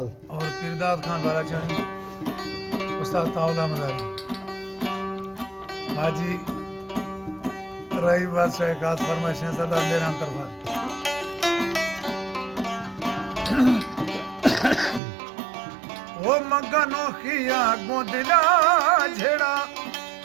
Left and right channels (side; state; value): left; drops out; at 15.0 s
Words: और पीरदाद खान बालाचानी, उस्ताद ताउला मदारी, हाजी रही बादशाह खास फरमाइश है सरदार मेहरान तरफा। वो मगनो खिया गोदला झेड़ा,